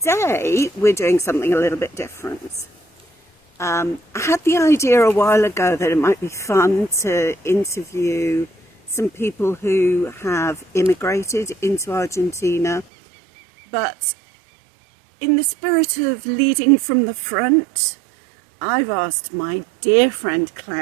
we're doing something a little bit different. I had the idea a while ago that it might be fun to interview some people who have immigrated into Argentina, but in the spirit of leading from the front, I've asked my dear friend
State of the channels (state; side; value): drops out; left; at 12.9 s